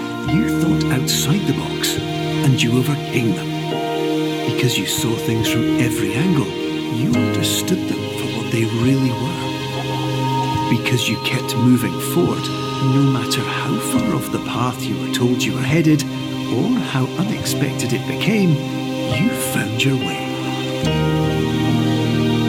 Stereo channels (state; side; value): identical; both; correlation 1.00